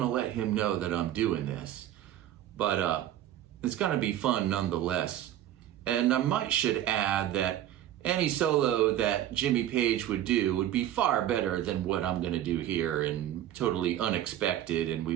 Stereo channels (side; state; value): left; quieter; 12.2 dB